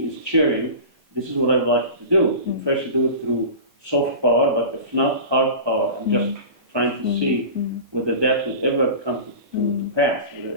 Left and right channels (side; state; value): left; late; 4.2 ms